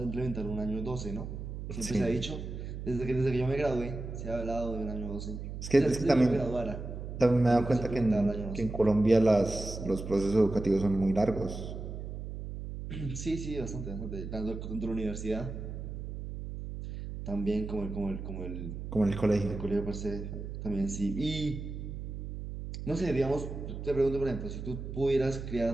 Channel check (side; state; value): right; noise; hum, 7 dB below the sound